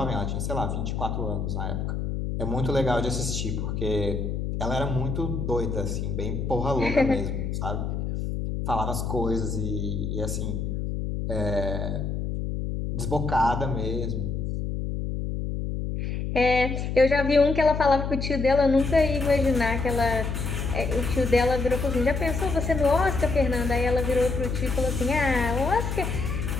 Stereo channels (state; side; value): noise; left; hum, 2 dB below the sound